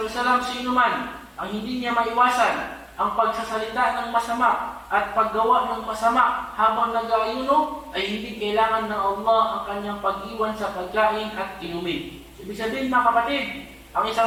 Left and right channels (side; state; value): both; identical; correlation 1.00